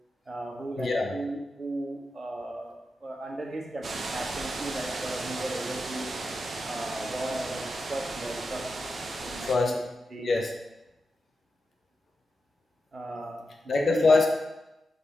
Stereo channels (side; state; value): both; normal; correlation 0.89